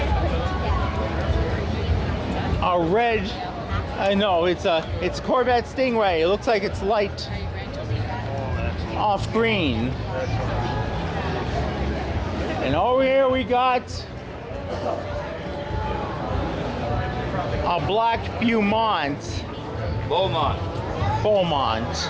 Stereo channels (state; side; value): identical; both; correlation 1.00